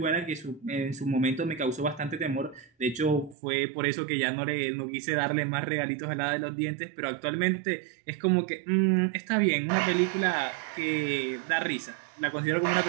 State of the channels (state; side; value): drops out; left; at 3.4 s